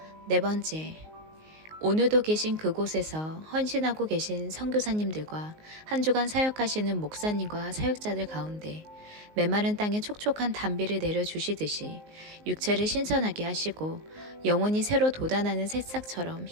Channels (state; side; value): late; left; 19 ms